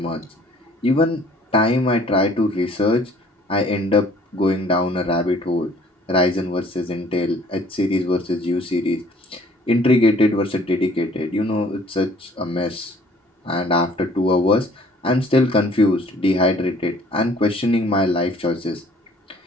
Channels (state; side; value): normal; both; correlation 0.56